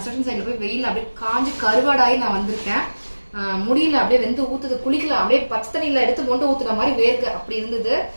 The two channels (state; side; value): inverted; both; correlation -1.00